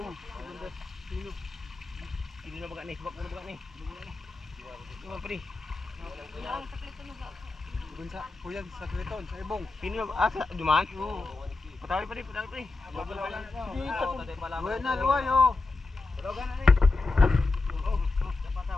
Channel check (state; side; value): quieter; right; 3.5 dB